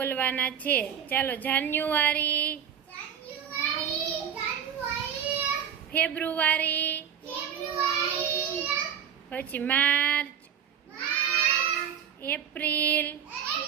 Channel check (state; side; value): quieter; left; 8.4 dB